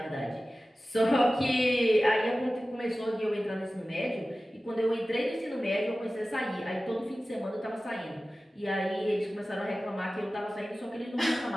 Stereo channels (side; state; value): both; normal; correlation 0.96